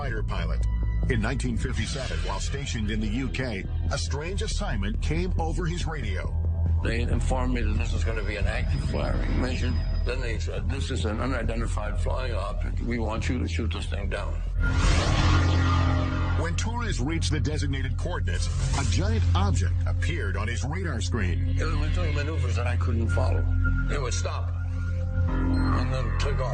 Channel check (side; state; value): both; identical; correlation 1.00